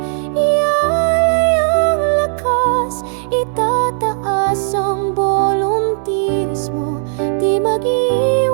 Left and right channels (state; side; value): silent; left; digital silence